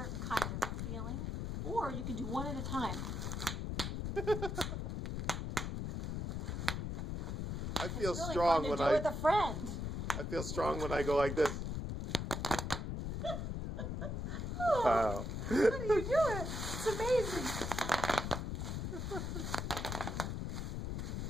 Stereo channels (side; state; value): left; noise; rumble, 3 dB below the sound